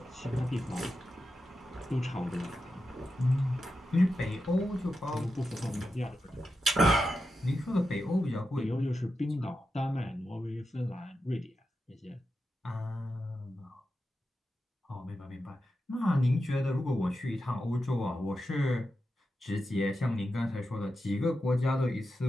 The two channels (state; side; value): normal; both; correlation 0.89